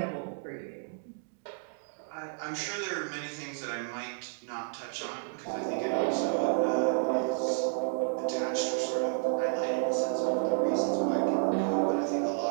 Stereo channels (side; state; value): left; silent; digital silence